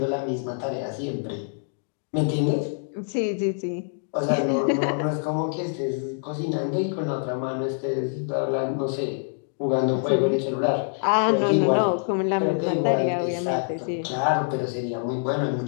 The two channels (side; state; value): right; silent; digital silence